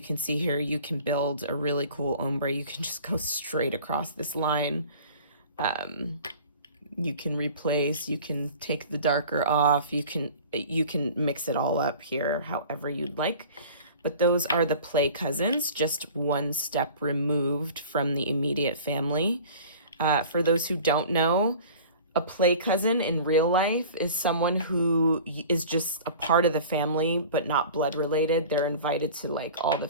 can see here, you can build a really cool ombre. You can just go straight across this line. You can replace, you can take the darker off, you can mix it all up here however you'd like. But those are the play cousins, just one step removed from the immediate family. For those who don't know, a play cousin in real life is someone who is just a part of the family, but not blood related. They're invited to like all the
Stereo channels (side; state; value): both; inverted; correlation -0.42